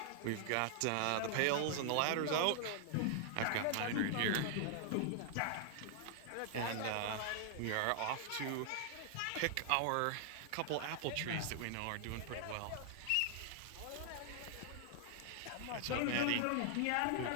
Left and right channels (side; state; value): both; different; correlation 0.00